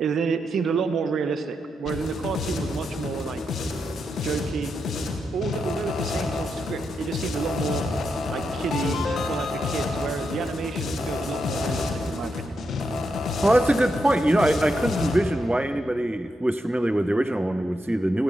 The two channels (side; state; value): both; normal; correlation 0.84